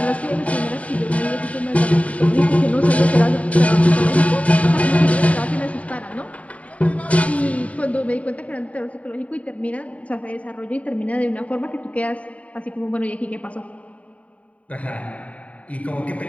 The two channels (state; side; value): late; right; 0.067 ms